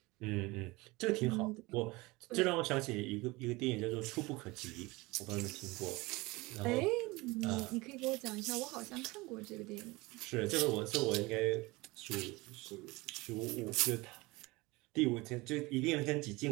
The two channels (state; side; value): quieter; left; 22.8 dB